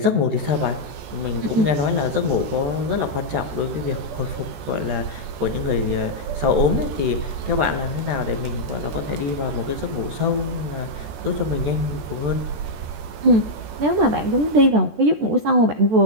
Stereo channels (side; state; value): left; late; 14 ms